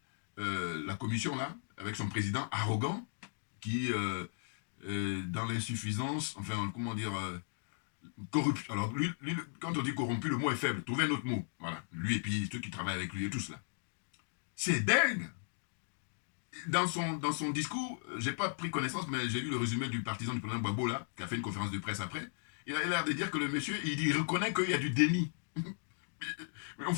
la commission, là, avec son président arrogant, qui, dans l'insuffisance, enfin, comment dire, corruption. Alors, lui, quand on dit corrompu, le mot est faible. Trouvez un autre mot. Voilà. Lui et puis ceux qui travaillent avec lui et tout cela. C'est dingue. Dans son discours, j'ai pas pris connaissance, mais j'ai lu le résumé du partisan du président Gbagbo, là, qui a fait une conférence de presse après. Il a l'air de dire que le monsieur, il reconnaît qu'il y a du déni. Mais on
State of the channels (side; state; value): right; silent; digital silence